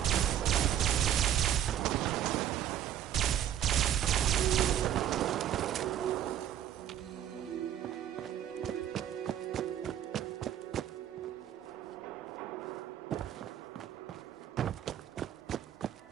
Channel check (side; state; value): left; quieter; 10.7 dB